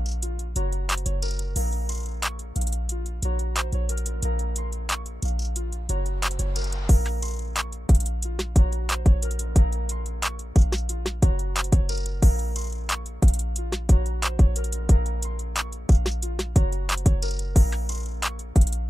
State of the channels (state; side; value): normal; both; correlation 0.94